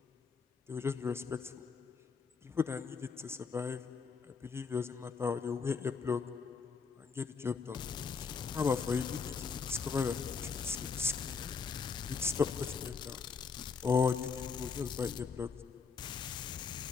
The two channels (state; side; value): quieter; right; 5.4 dB